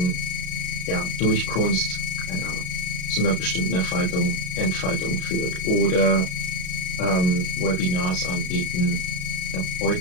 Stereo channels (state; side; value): late; right; 33 ms